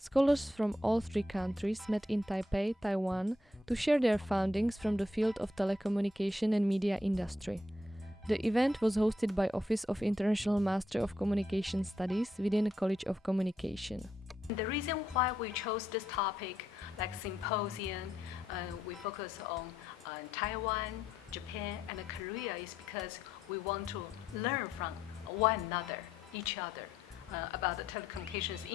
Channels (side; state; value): both; normal; correlation 0.77